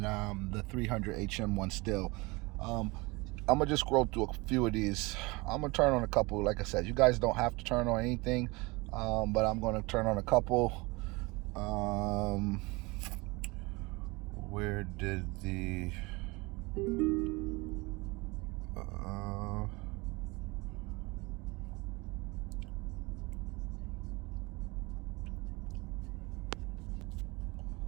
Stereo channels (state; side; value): quieter; left; 24.9 dB